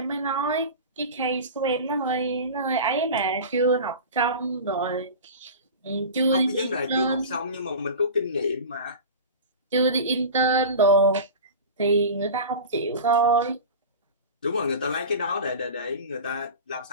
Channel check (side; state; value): both; inverted; correlation -0.32